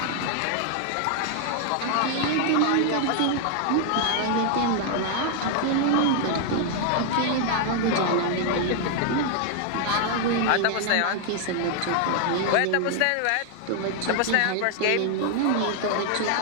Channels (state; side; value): different; both; correlation 0.00